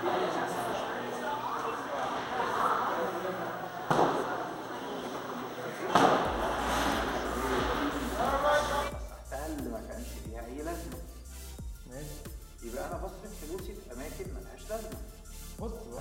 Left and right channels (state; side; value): identical; both; correlation 1.00